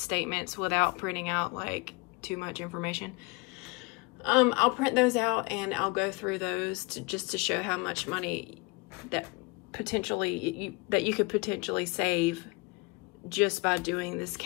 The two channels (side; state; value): right; quieter; 26.9 dB